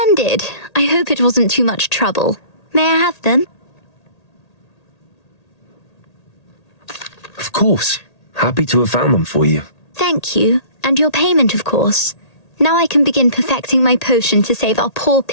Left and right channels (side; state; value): right; late; 1.8 ms